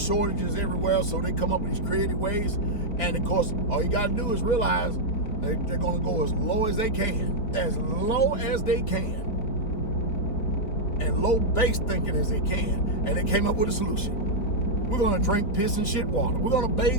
everywhere, so they come up with these creative ways. And of course, all you got to do is realize they're going to go as low as they can, and low base thinking as they can. And they came up with a solution. We're going to drink piss and shit water. We're going to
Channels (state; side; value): late; right; 4.6 ms